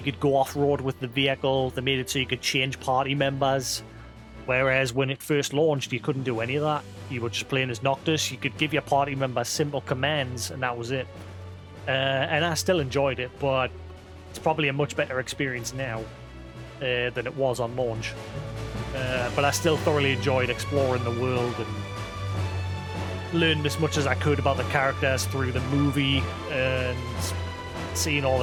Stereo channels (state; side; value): identical; both; correlation 1.00